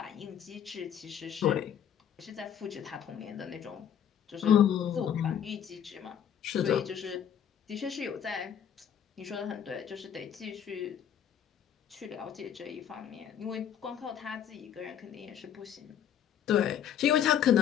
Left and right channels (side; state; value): right; quieter; 9.2 dB